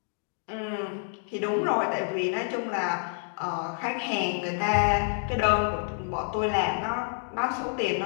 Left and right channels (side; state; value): right; silent; digital silence